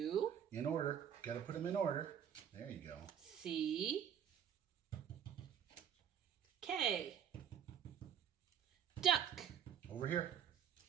In order. Got to put them in order. There you go. C-K. Duck. Over here.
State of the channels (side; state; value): left; quieter; 8.9 dB